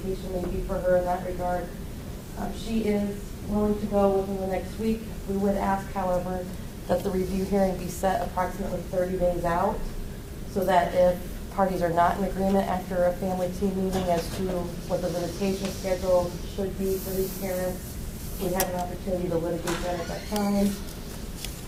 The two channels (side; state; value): both; identical; correlation 1.00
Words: may be for her in that regard. She is willing to go within the next week. We would ask, however, that the review hearing be set approximately 30 days out, so that if parties are not in agreement after a family team meeting as to what the visitation schedule should be for these parents, we have an opportunity to litigate that at that time.